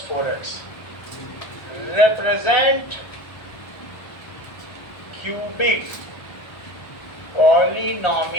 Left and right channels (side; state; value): right; late; 1.4 ms